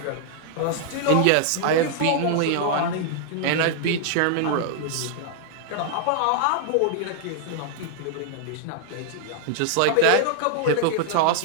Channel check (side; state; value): both; different; correlation -0.01